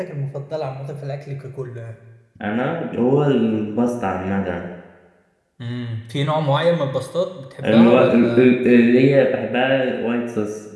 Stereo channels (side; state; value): both; identical; correlation 1.00